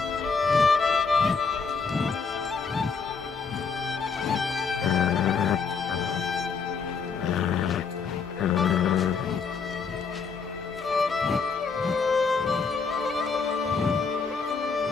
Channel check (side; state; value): right; quieter; 5.3 dB